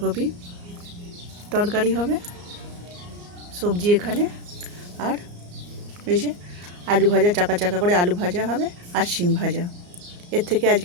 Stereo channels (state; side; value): late; left; 34 ms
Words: তরকারি হবে, সবজি এখানে। আর এই যে আলু ভাজা, চাকা চাকা করে আলু ভাজা হবে, আর শিম ভাজা। এর থেকে